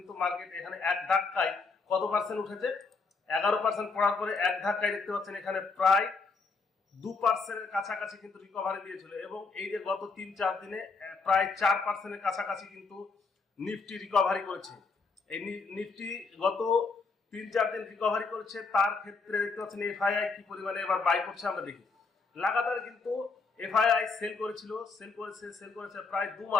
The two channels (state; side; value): quieter; right; 4.4 dB